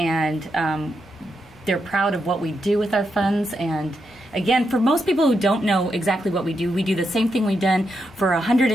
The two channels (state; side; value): normal; both; correlation 0.83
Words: they're proud of what we do with our funds. And again, for most people who don't know exactly what we do the same thing we've done for